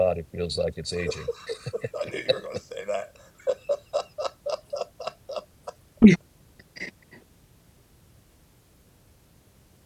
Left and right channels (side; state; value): both; identical; correlation 1.00